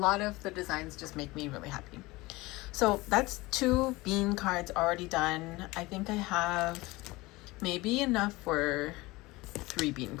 of the designs just make me really happy. So that's 2 bean cards already done. I think I have maybe enough for 3 bean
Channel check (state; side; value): quieter; right; 21.3 dB